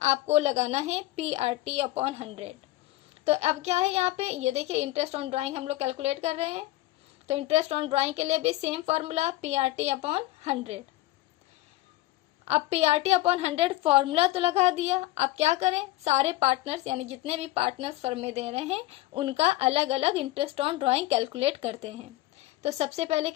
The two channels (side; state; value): right; quieter; 17.2 dB